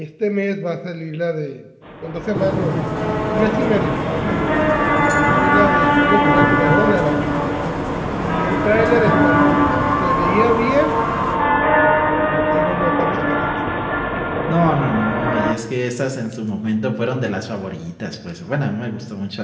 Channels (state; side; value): identical; both; correlation 1.00